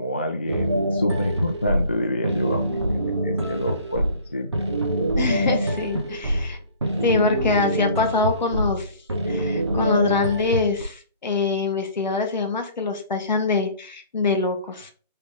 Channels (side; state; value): both; inverted; correlation -0.49